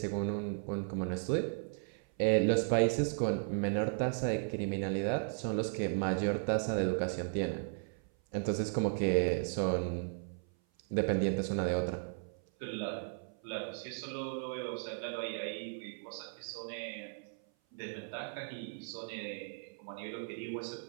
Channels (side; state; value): left; silent; 54 dB below the other